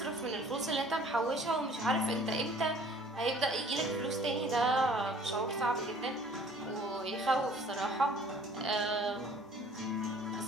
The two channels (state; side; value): normal; both; correlation 0.53